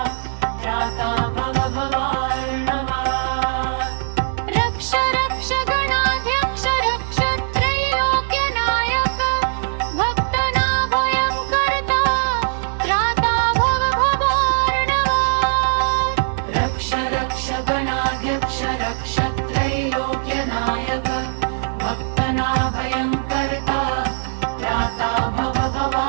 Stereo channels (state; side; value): silent; left; 65 dB below the other